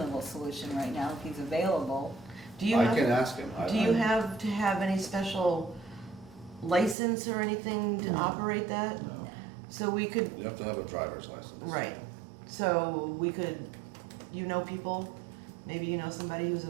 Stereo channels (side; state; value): left; drops out; at 7.0 s